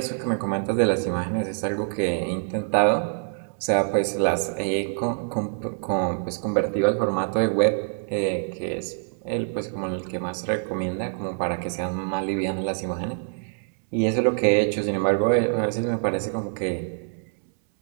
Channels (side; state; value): left; silent; 62 dB below the other